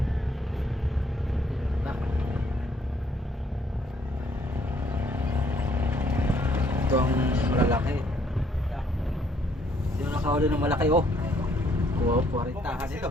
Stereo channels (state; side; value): normal; both; correlation 0.67